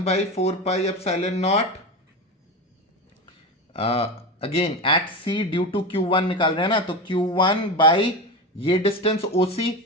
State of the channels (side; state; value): both; normal; correlation 0.21